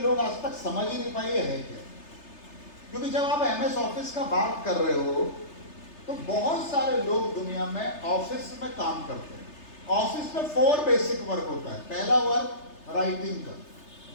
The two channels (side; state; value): right; late; 3.3 ms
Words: आज तक समझ ही नहीं पाए है क्या। क्योंकि जब आप एमएस ऑफिस का बात कर रहे हो तो बहुत सारे लोग दुनिया में ऑफिस में काम करते हैं। ऑफिस में 4 बेसिक वर्क होता है। पहला वर्क राइटिंग का,